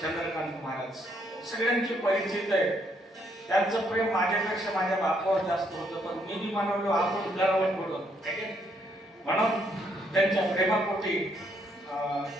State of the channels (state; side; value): normal; both; correlation 0.72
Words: महाराज सगळ्यांचे परिचित आहे. त्यांचं प्रेम माझ्यापेक्षा माझ्या बापावर जास्त होतं, पण मी बी म्हणलो आपण करावं थोडं म्हणून त्यांच्या प्रेमापोटी